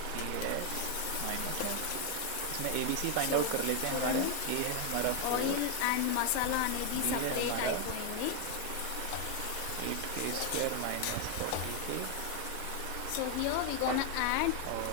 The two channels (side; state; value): both; different; correlation 0.01